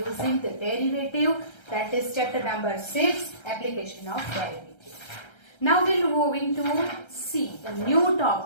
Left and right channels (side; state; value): right; late; 1.3 ms